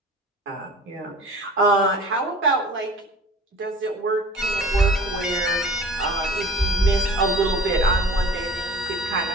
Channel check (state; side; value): normal; both; correlation 0.44